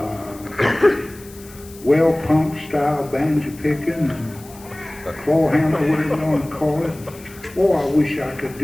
well pump style banjo picking and claw handle, whatever you want to call it. Oh, I wish I could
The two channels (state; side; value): noise; left; hiss, 21 dB below the sound